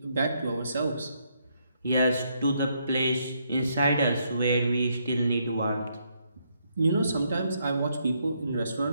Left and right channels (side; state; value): both; inverted; correlation -0.74